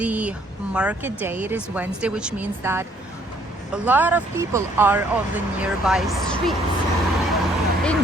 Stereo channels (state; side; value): normal; both; correlation 0.64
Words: market day. It is Wednesday, which means that a lot of people are on the nearby streets